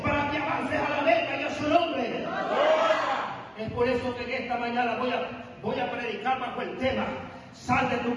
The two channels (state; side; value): identical; both; correlation 1.00